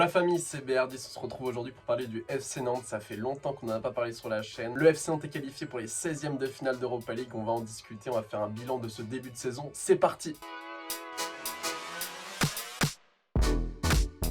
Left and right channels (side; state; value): both; identical; correlation 1.00